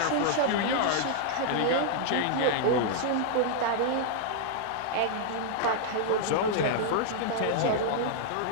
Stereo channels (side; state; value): both; different; correlation -0.01